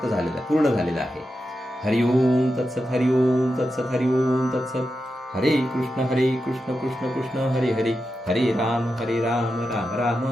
झालेलं, पूर्ण झालेलं आहे. हरिओम तत्सत, हरिओम तत्सत, हरिओम तत्सत. हरे कृष्ण कृष्ण कृष्ण हरे हरे, हरे राम राम राम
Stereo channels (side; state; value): both; normal; correlation 0.89